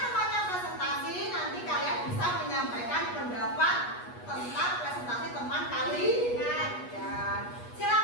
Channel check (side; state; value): right; late; 8.3 ms